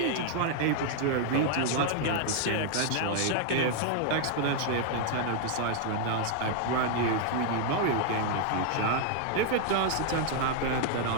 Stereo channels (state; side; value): different; both; correlation 0.00